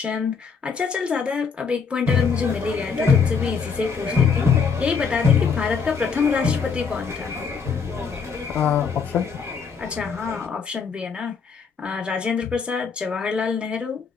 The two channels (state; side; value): quieter; right; 5.7 dB